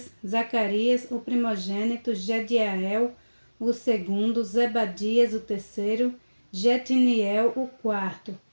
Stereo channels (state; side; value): inverted; both; correlation -1.00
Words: Zacarias, o primogênito, Jediael, o segundo, Zebadias, o terceiro, Jetiniel, o quarto,